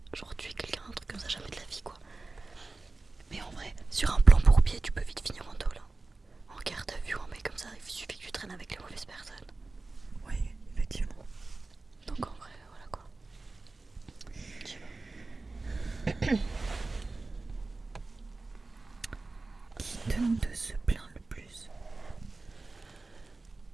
Genre tuer quelqu'un, un truc comme ça, jamais de la vie quoi. Mais en vrai, sur un plan bourbier, tu peux vite finir en tôle. En garde à vue, un mec comme ça, il suffit que tu traînes avec les mauvaises personnes. Oui, effectivement. Donc en vrai, voilà quoi. Je sais pas. Qui de nous deux se plaint le plus?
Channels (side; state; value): left; quieter; 3.4 dB